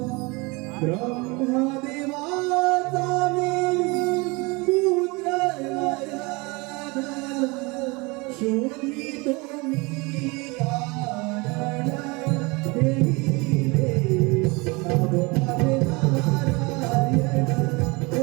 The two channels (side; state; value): left; quieter; 26.6 dB